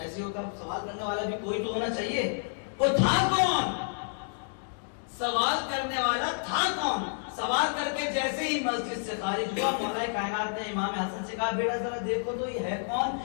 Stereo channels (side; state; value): right; silent; digital silence